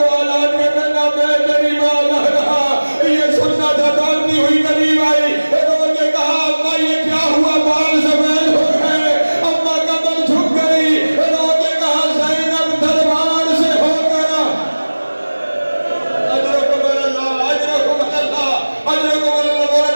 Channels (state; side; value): inverted; both; correlation -1.00